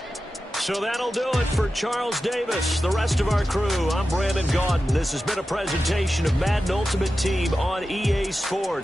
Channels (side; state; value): both; normal; correlation 0.93